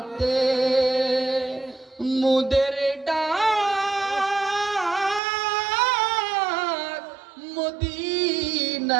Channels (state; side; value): drops out; left; at 5.2 s